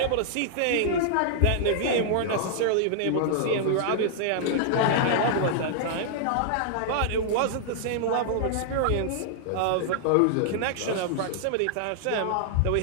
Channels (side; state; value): both; different; correlation -0.01